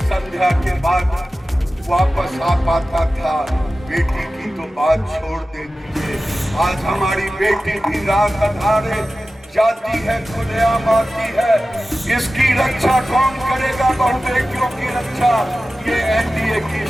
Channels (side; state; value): both; normal; correlation 0.95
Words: संध्या के बाद वापस आ पाता था, बेटी की तो बात छोड़ दे दीजिए। आज हमारी बेटी भी रात अधारे जाती है, खुलेआम आती है। इसकी रक्षा कौन करेगा? बहु बेटियों की रक्षा ये एनडीए की